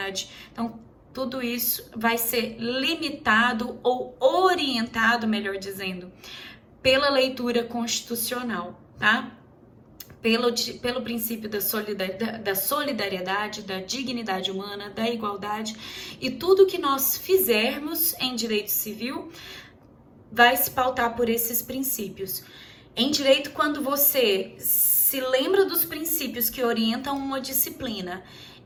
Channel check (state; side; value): identical; both; correlation 1.00